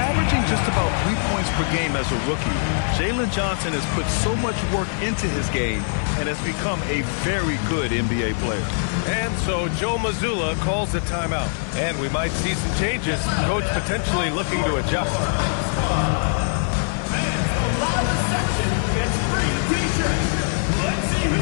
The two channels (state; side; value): silent; right; digital silence